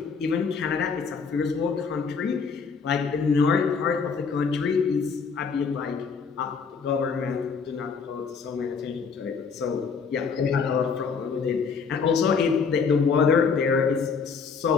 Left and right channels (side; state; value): right; quieter; 5.5 dB